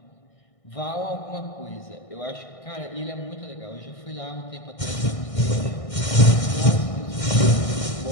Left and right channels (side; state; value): right; late; 1.6 ms